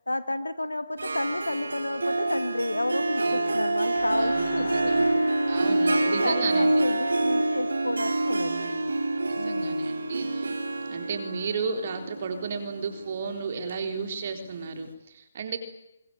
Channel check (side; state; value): both; inverted; correlation -0.94